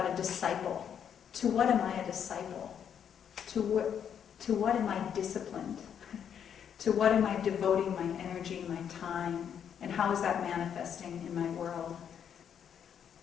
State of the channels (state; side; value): quieter; right; 8.4 dB